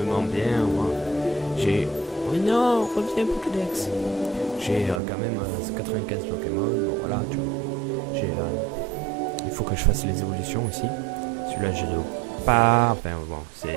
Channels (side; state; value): left; drops out; at 5.0 s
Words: bien. Moi, j'ai oh non, reviens Pokédex. J'ai quand même 95 Pokémon. Bon voilà, tu vois. J'ai il faut que je fasse les évolutions aussi. Celui-là, je l'ai pas. Enfin, bon, c'est